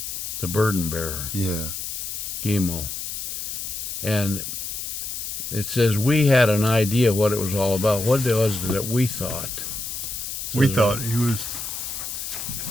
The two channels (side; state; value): left; noise; hiss, 5 dB below the sound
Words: The burden bearer. Yeah. Gimel. And it says we had an idea what it was all about. What was it that we thought? We thought he was